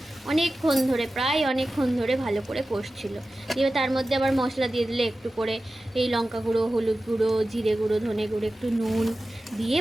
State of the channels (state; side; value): normal; both; correlation 0.95